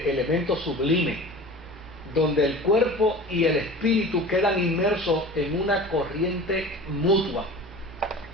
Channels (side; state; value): both; normal; correlation 0.38